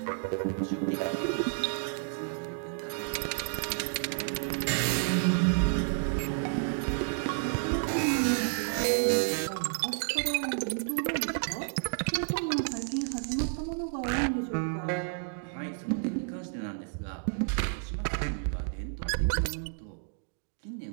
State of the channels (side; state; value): left; silent; digital silence